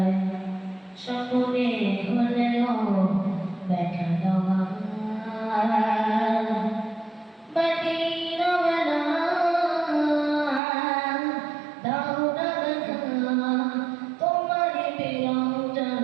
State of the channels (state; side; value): drops out; left; at 10.6 s